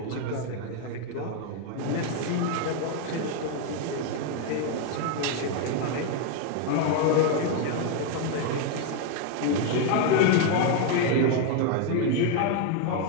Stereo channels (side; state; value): both; different; correlation 0.01